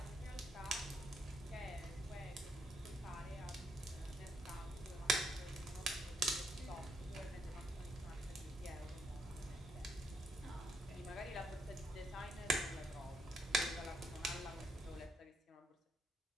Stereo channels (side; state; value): both; normal; correlation 0.75